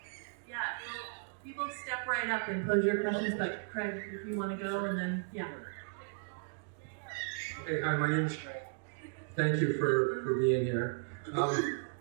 Yeah, people step right up and pose your questions, but Craig, if you want to go, and then, Okay, hi, my name is Craig. Thank you for being here.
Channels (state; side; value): silent; left; digital silence